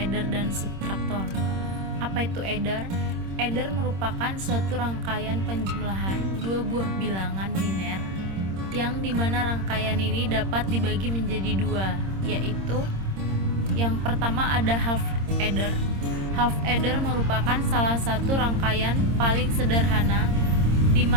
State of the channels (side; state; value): left; late; 26 ms